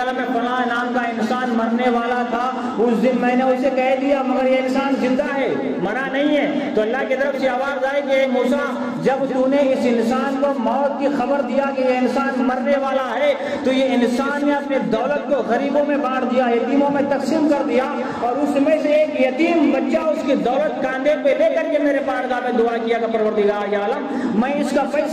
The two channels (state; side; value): identical; both; correlation 1.00